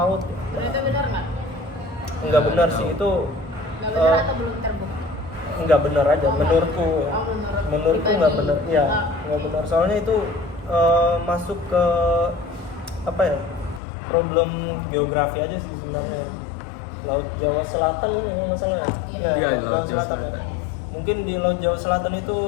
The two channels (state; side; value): drops out; right; at 13.8 s